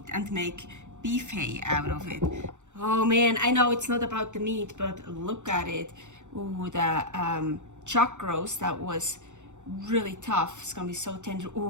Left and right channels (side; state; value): left; late; 0.84 ms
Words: and make bife out of it. Oh man, I know it's not about the meat, but look at it. Ooh, the chuck roast, that was really tough. It's gonna be so tender.